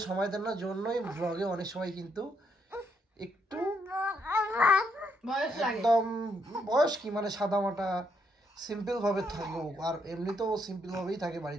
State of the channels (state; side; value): normal; both; correlation 0.75